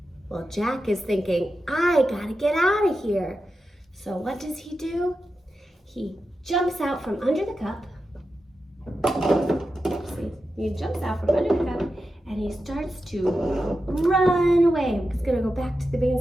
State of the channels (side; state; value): both; normal; correlation 0.90